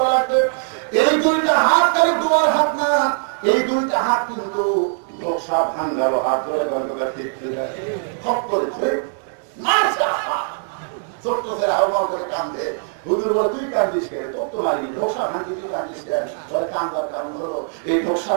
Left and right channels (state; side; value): silent; left; digital silence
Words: লাগবে? এই দুইটা হাত তাহলে দোয়ার হাত না, এই দুইটা হাত কিন্তু ধোসা ভাঙ্গালো হাত ধরে গল্পটা ঠিক খপ করেছে ছোট্ট ছেলে আহ্বান করে কান্দে। হুজুর বলে তুই কান্দিস কেন? কত মারি ধোসা ভাঙি তুই কান্দিস কেন? বলে কান্দার কারণ হলো এই ধোসা